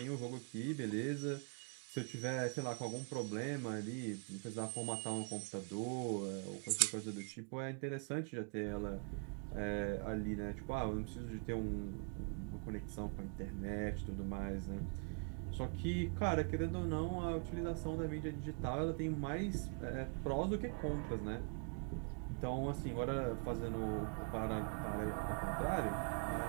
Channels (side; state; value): left; quieter; 39.1 dB